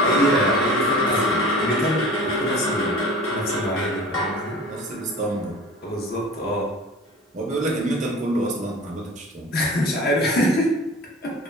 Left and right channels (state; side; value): normal; both; correlation 0.40